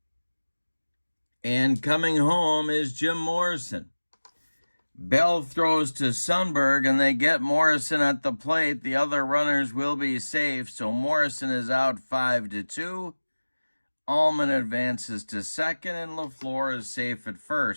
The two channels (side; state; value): both; inverted; correlation -1.00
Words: And coming home is Jim Morrison. Bell throws to Sundberg, and they get Morrison at the plate. The other runners will be safe, so Morrison is out 5-2. Allman advances to second, and LaFleur is safe at